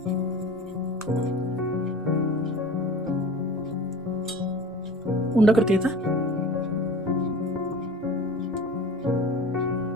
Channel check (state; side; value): normal; both; correlation 0.38